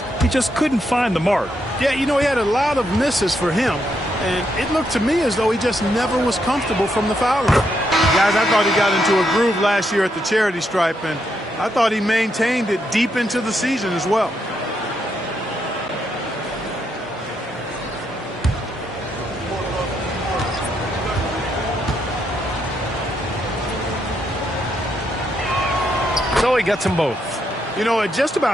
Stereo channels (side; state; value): both; normal; correlation 0.78